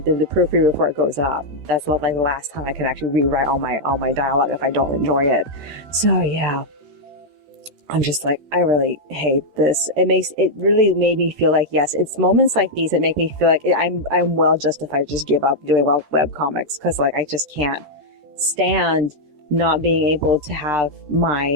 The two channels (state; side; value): late; left; 13 ms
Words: the proofread before it goes up. That's not like the last time I can actually rewrite all my dialogue if I don't enjoy it. So yeah, I'm just like, I really hate this. It really made me feel like, yes, it's moments like these that make me feel like I'm well justified to just give up doing web comics, because like I just can't stand not being able to have